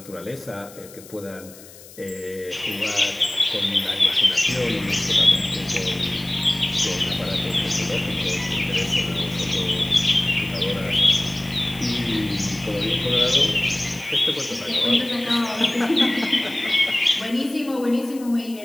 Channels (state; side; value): noise; left; hiss, 20 dB below the sound